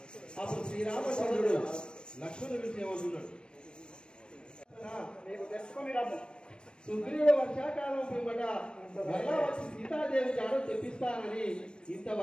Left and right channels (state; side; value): late; right; 0.054 ms